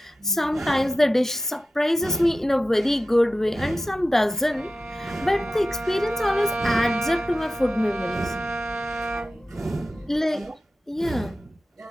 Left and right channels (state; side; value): normal; both; correlation 0.93